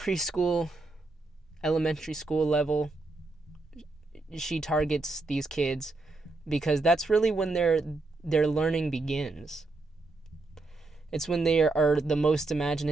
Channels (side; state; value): left; quieter; 3.3 dB